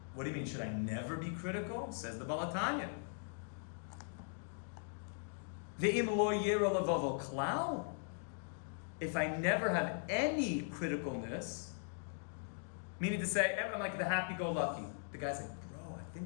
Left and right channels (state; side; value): silent; right; digital silence